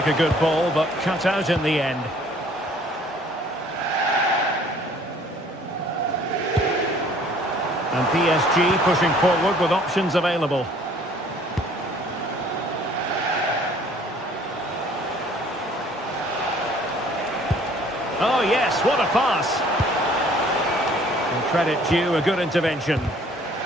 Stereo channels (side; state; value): both; normal; correlation 0.56